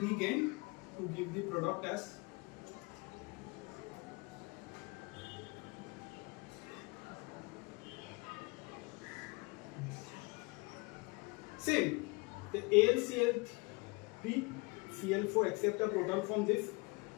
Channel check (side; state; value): right; quieter; 28.1 dB